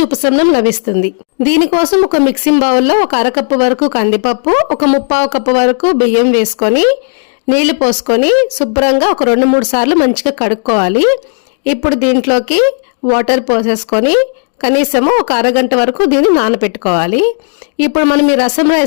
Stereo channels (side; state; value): right; silent; 60 dB below the other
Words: ఉపశమనం లభిస్తుంది. దీనికోసం ఒక మిక్సింగ్ బౌల్లో ఒక అరకప్పు వరకు కందిపప్పు, ఒక 1/4 కప్పు వరకు బియ్యం వేసుకొని నీళ్లు పోసుకొని శుభ్రంగా ఒక 2-3 సార్లు మంచిగా కడుక్కోవాలి. ఇప్పుడు దీంట్లోకి వాటర్ పోసేసుకొని కనీసము ఒక అరగంట వరకు దీన్ని నానబెట్టుకోవాలి. ఇప్పుడు మనం ఈ రసం